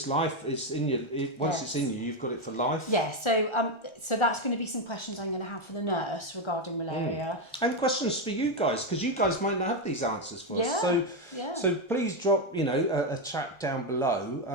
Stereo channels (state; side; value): late; right; 1.4 ms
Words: life. It's in you. Once it's in you, you've got it for life. Yeah. So that's going to be some questions I'm going to have for the nurse regarding malaria. And questions for you guys, because you guys might not have these answers for us. Yeah. So please drop a chat down